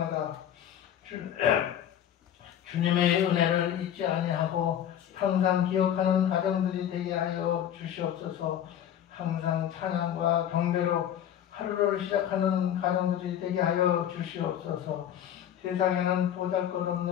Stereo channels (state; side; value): quieter; right; 10.3 dB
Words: 주님의 은혜를 잊지 아니하고 항상 기억하는 가정들이 되게 하여 주시옵소서. 항상 찬양과 경배로 하루를 시작하는 가정들이 되게 하여 주시옵소서. 세상에는